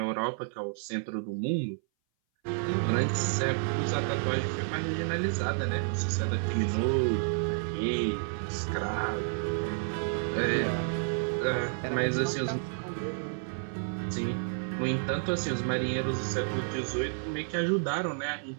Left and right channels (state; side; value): silent; left; 57 dB below the other